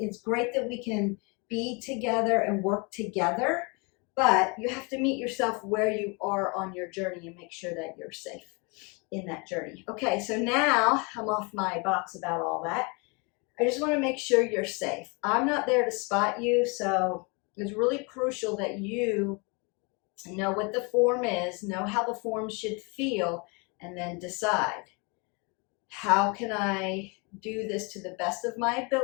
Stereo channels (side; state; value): right; quieter; 30.9 dB